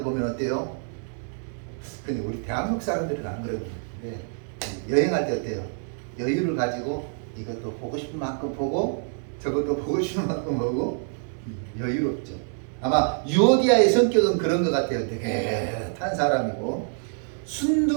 보면 어때요? 근데 우리 대한민국 사람들은 안 그러거든요. 여행할 때 어때요? 여유를 가지고 이것도 보고 싶은 만큼 보고 저것도 보고 싶은 만큼 보고 여유롭죠. 아마 유오디아의 성격은 그런 것 같아요. 느긋한 사람이고,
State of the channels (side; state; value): left; silent; 58 dB below the other